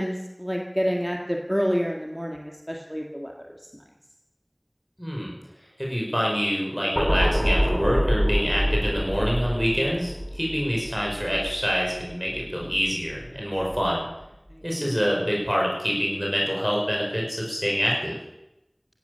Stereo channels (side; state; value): both; identical; correlation 1.00